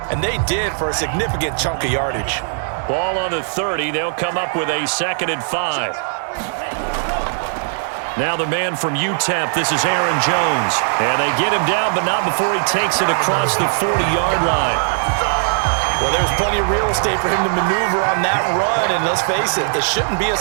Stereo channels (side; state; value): left; silent; digital silence